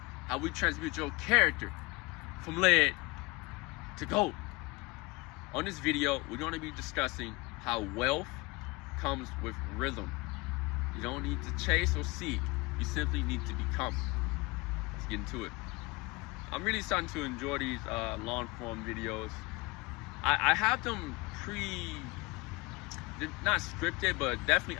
how we transmute your character from lead to gold. On this video, we're going to be discussing how wealth comes with rhythm. You don't need to chase or seek, you simply need to become. Let's get into it. I'm really starting to enjoy these long form videos. I have them they're not scripted, but definitely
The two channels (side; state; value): right; quieter; 24.6 dB